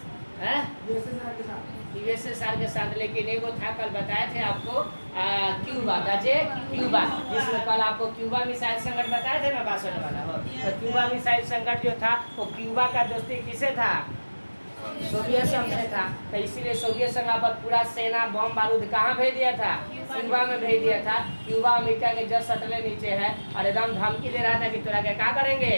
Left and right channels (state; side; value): inverted; both; correlation -1.00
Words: यूएसएसआर के साथ। लेकिन एगो था, कल बताए थे आपको, क्यूबा, क्यूबा, जिसमें कल आपको क्यूबा मिसाइल संकट बताए थे ना, 62 वाला हो। तो क्यूबा मिसाइल संकट जो था वो क्यूबा का दोस्ती किसे था, सोवियत संघ से था। तो इसीलिए सोवियत संघ पर पूरा सेना बम बारूद कहाँ भेज दिया था, क्यूबा में भेज दिया था। क्यूबा अमेरिका के जस्ट सटले नीचे है और एकदम धमकी दे रहा था कि तोरा क्या करेंगे,